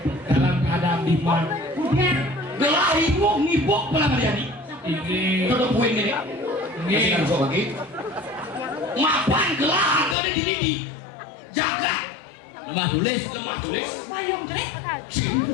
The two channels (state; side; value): drops out; right; at 10.2 s